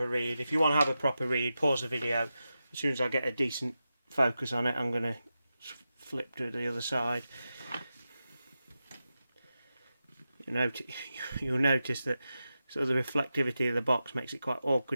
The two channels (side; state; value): both; inverted; correlation -0.91